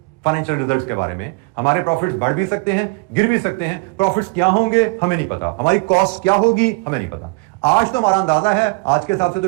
फाइनेंशियल रिजल्ट्स के बारे में। हमारे प्रॉफिट्स बढ़ भी सकते हैं, गिर भी सकते हैं। प्रॉफिट्स क्या होंगे हमें नहीं पता, हमारी कॉस्ट क्या होगी हमें नहीं पता। आज तो हमारा अंदाजा है, आज के हिसाब से तो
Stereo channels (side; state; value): left; quieter; 29.1 dB